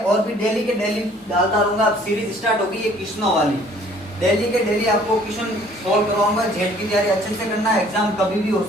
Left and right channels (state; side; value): normal; both; correlation 0.56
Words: भी डेली के डेली डालता रहूंगा। अब सीरीज स्टार्ट होगी ये क्वेश्चनों वाली, डेली के डेली आपको क्वेश्चन सॉल्व करवाऊंगा। जेड की तैयारी अच्छे से करना, एग्जाम कभी भी हो